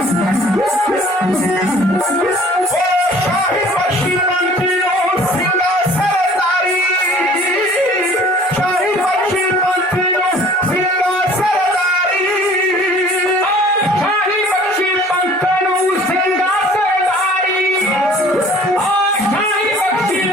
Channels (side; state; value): both; normal; correlation 0.51